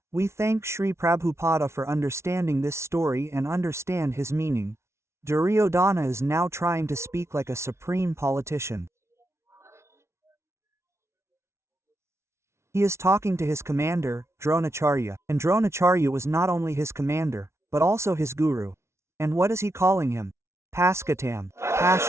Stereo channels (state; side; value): late; left; 0.13 ms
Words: we thank Sri Prabhupada for understanding this story and understand his meaning. Duryodana is now trying to speak like a supreme politician. He is talking to his commander, Dronacharya, and Dronacharya was not only his commander, but also his guru. And what is he calling him? Paskatam,